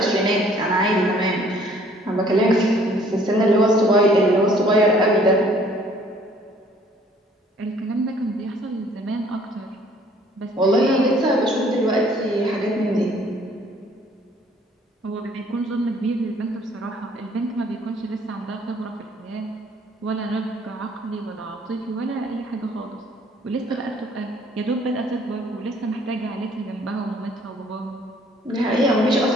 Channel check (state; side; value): normal; both; correlation 0.59